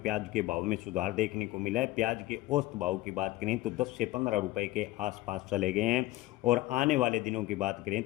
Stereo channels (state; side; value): quieter; right; 18.1 dB